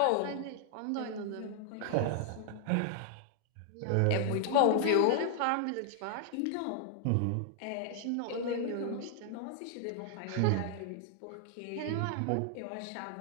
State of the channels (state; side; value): different; both; correlation 0.00